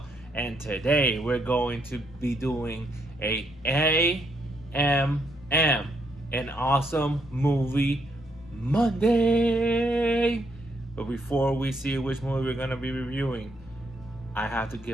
and today we're going to be doing a AMM, an awesome movie Monday. But before we see which movie we're going to be reviewing, I have to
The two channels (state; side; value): normal; both; correlation 0.75